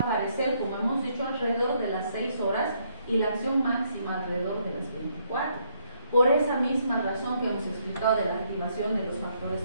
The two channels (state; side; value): inverted; both; correlation -0.72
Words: como hemos dicho, alrededor de las 6 horas y la acción máxima alrededor de las 24. Por esa misma razón que hemos explicado de la activación de los factores